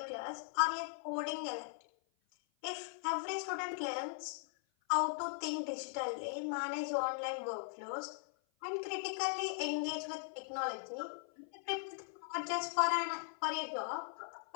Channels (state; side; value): silent; right; 51 dB below the other